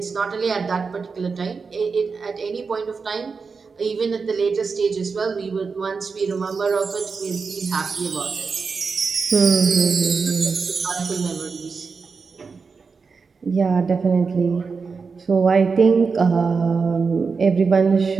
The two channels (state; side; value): quieter; left; 5.0 dB